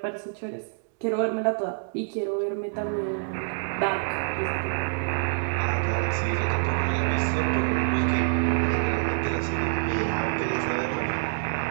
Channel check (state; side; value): silent; left; 61 dB below the other